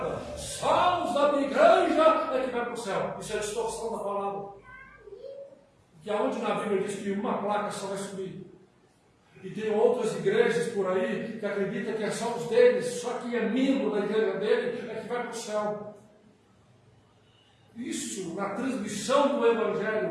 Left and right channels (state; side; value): identical; both; correlation 1.00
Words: só os da minha igreja é que vai para o céu. Isso é a distorção da palavra. Que aonde na Bíblia diz que uma placa só vai subir. E tem outras igrejas por aí que acreditam que é só os deles, só quem é membro da igreja dele é que vai para o céu. isso, na transmissão do